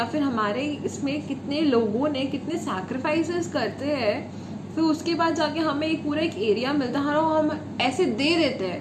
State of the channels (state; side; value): identical; both; correlation 1.00